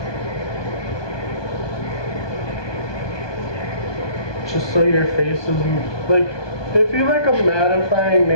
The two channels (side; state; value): right; late; 1.2 ms